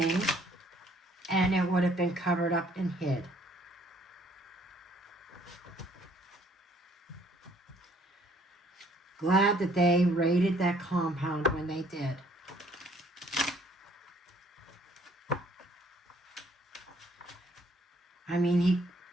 and it would have been covered up and hid. Glad that they raided that compound when they did. I mean,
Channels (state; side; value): normal; both; correlation 0.62